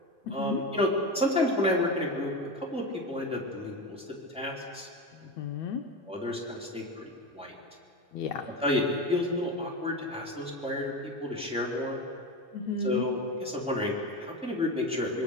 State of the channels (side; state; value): both; normal; correlation 0.22